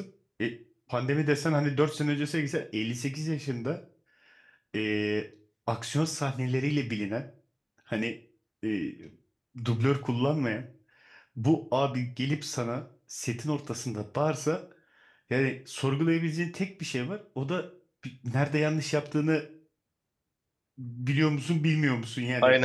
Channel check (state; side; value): identical; both; correlation 1.00